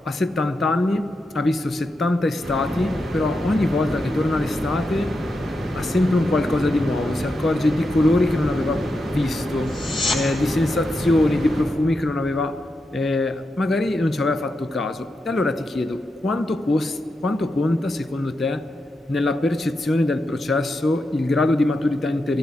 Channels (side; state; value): both; normal; correlation 0.86